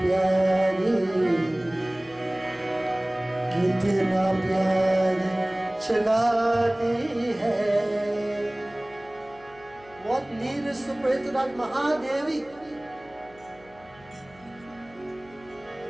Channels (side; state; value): left; noise; hum, 26 dB below the sound